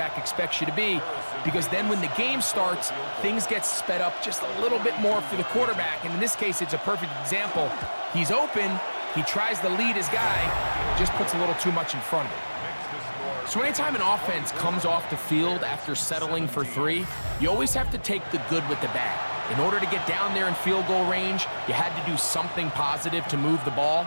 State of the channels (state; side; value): inverted; both; correlation -1.00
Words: expects you to be, because then when the game starts, things get sped up just a little bit more for the quarterback. And in this case, it's a perfect example. He's open, he tries to lead his guy, just puts a little too much in front of him. So anytime an offense comes off the field after settling for 3, you always have to take the good with the bad. In order to get down there in field goal range, you had to do something positive to move the ball.